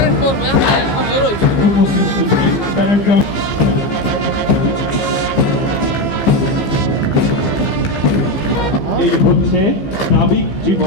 এই হচ্ছে নাবিক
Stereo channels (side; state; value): right; late; 15 ms